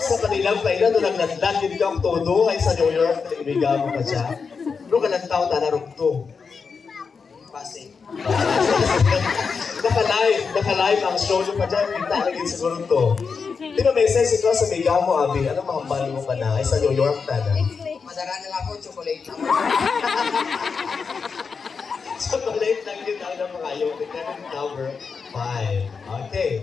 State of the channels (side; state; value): right; quieter; 5.4 dB